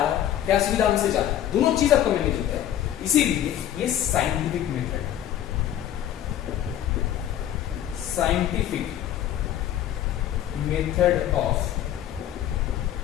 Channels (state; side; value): quieter; right; 11.4 dB